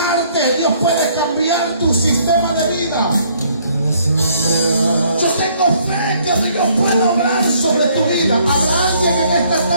Dios puede cambiar tu sistema de vida. Yo tengo fe que Dios puede obrar sobre tu vida. Habrá alguien en esta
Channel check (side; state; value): both; inverted; correlation -0.64